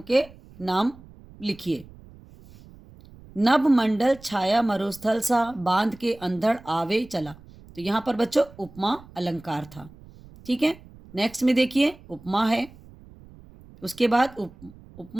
के नाम लिखिए। नभ मंडल छाया मरुस्थल सा बांध के अंधड़ आवे चला। तो यहाँ पर बच्चों उपमा अलंकार था। ठीक है। नेक्स्ट में देखिए उपमा है, उसके बाद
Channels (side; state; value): right; noise; rumble, 22 dB below the sound